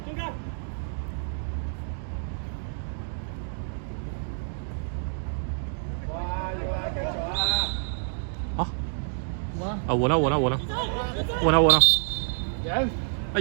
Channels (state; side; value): silent; left; digital silence